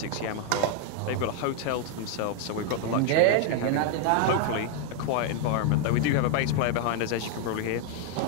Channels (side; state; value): both; different; correlation 0.00